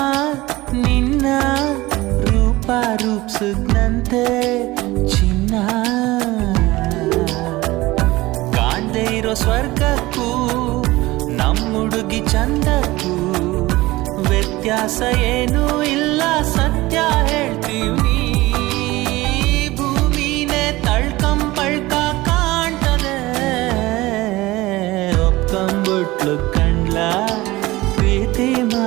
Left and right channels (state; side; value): quieter; left; 19.4 dB